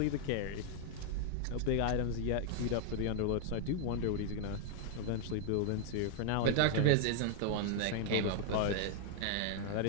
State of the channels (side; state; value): both; different; correlation 0.00